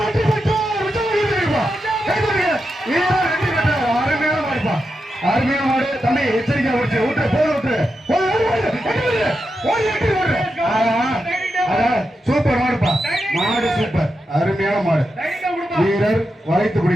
பெற்றார் அருமையான மாடு தம்பி எச்சரிக்கை விட்டு சூப்பர் மாடுப்பா மாடு சூப்பர் அருமையான மாடு வீரர் வளைத்து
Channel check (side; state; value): both; normal; correlation 0.87